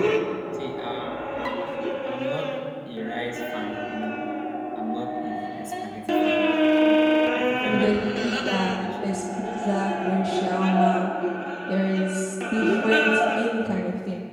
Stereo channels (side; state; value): both; identical; correlation 1.00